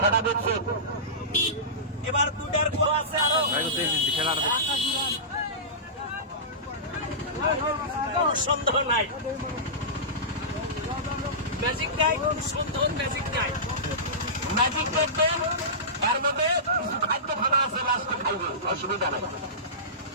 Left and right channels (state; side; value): normal; both; correlation -0.20